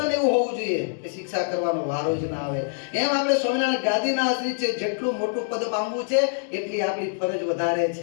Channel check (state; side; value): silent; right; digital silence